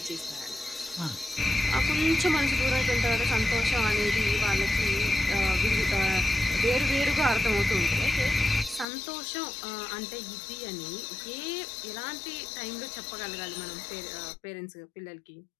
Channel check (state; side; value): drops out; right; at 8.8 s